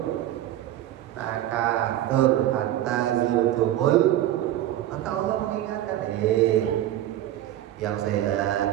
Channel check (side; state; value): left; quieter; 13.1 dB